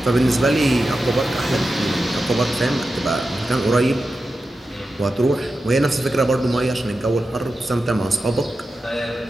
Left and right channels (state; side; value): normal; both; correlation 0.91